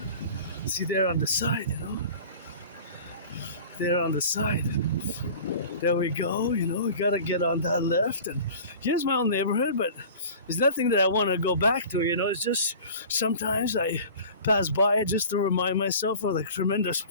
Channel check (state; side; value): inverted; both; correlation -0.41